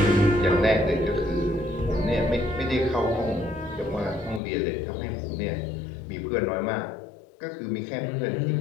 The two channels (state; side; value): drops out; right; at 4.4 s